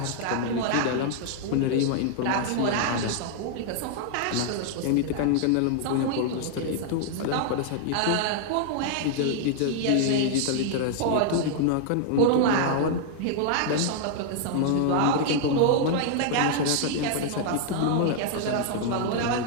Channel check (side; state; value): both; different; correlation 0.00